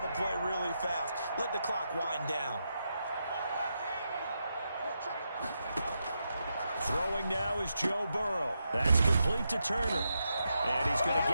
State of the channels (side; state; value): both; inverted; correlation -0.85